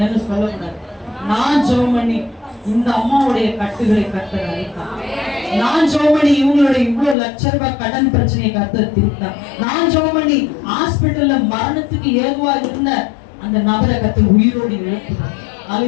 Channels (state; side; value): drops out; right; at 7.2 s